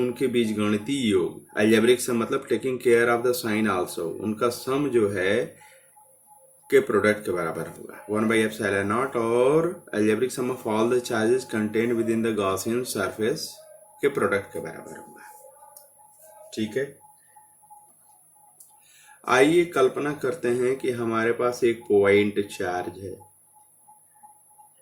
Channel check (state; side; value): identical; both; correlation 1.00